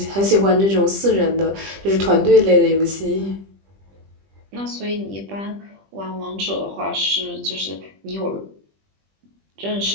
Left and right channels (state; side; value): late; left; 20 ms